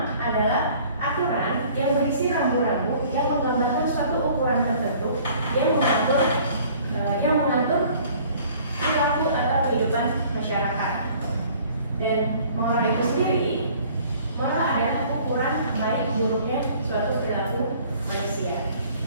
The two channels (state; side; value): inverted; both; correlation -0.53